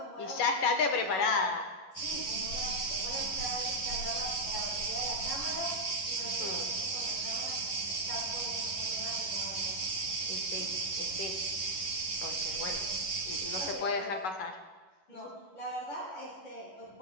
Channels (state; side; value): late; right; 11 ms